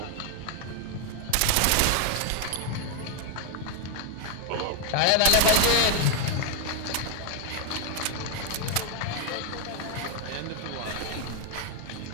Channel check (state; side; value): different; both; correlation 0.00